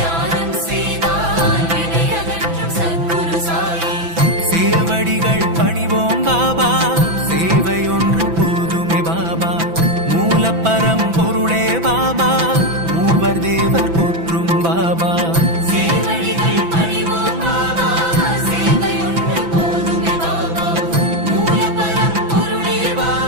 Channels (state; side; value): late; left; 6.0 ms